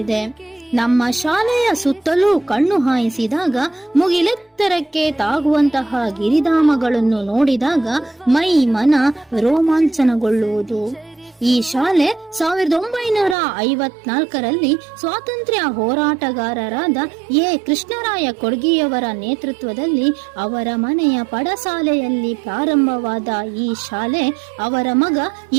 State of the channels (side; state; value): left; drops out; at 13.4 s